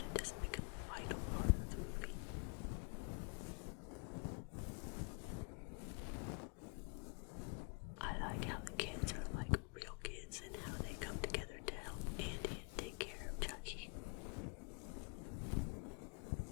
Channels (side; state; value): right; quieter; 35.5 dB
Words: it doesn't become a vital part of the movie. I like how the kids are like real kids and how they come together to help Andy and take care of Chucky.